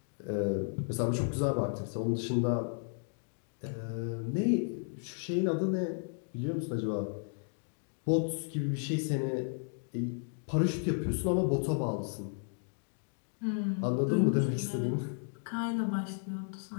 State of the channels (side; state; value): right; silent; 55 dB below the other